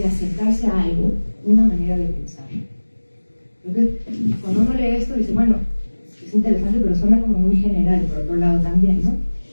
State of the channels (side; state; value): both; inverted; correlation -1.00